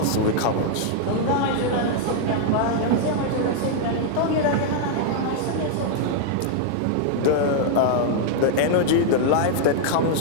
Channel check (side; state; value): both; different; correlation -0.01